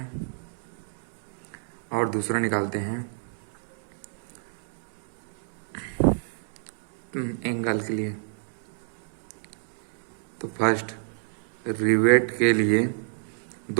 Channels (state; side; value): silent; left; 58 dB below the other